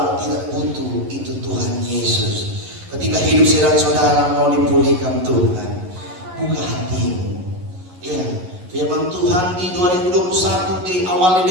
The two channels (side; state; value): left; late; 11 ms